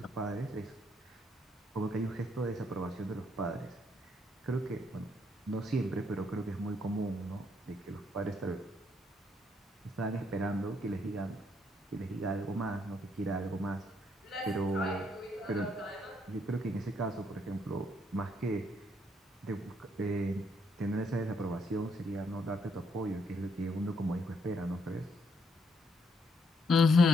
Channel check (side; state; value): both; normal; correlation 0.73